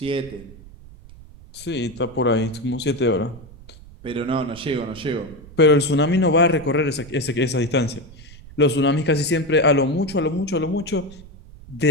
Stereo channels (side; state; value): right; noise; rumble, 19 dB below the sound